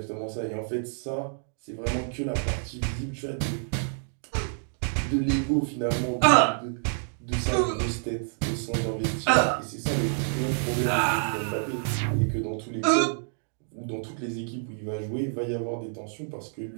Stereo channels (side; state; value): left; silent; digital silence